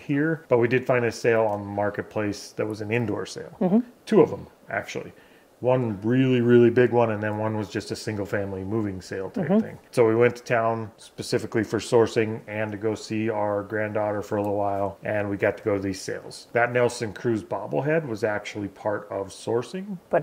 but we did find a sale on Marketplace that was an indoor sale. 2 of them, actually. One really, really big one, and then one was just a single family moving sale type thing. So we went to town specifically for sourcing and to go see our granddaughter for a little while, and we got to go to these sales. That Nelson Cruz bobblehead was actually part of sourcing.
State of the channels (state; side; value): identical; both; correlation 1.00